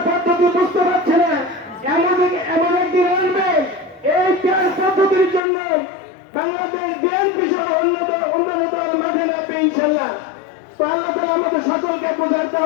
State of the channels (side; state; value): right; drops out; at 5.5 s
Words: পদ্ধতি বুঝতে পারছে না, এমন একদিন আসবে এই পেয়ার পদ্ধতির জন্য বাংলাদেশ বিএনপি সহ অন্য দল মাঠে নামবে ইনশাল্লাহ। তো আল্লাহ তাআলা আমাদের সকলকে বোঝার